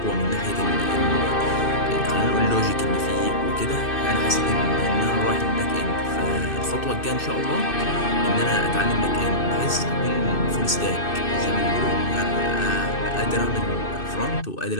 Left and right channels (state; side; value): late; right; 2.6 ms